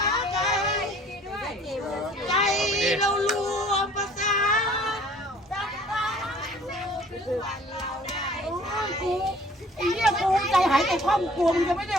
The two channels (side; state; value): both; normal; correlation 0.53